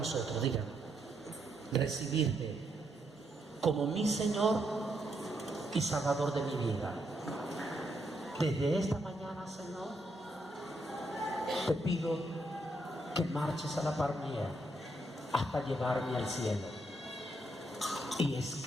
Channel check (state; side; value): normal; both; correlation 0.77